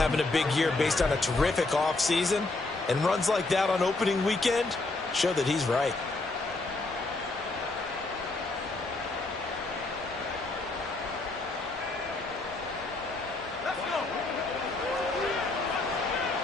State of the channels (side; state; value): right; quieter; 3.2 dB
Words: a big year based on a terrific offseason. And runs like that on opening weekend show that he's right.